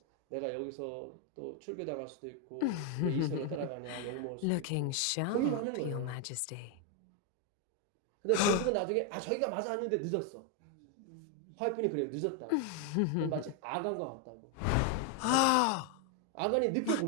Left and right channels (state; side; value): different; both; correlation 0.01